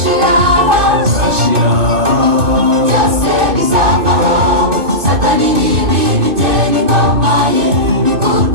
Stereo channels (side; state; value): left; late; 2.6 ms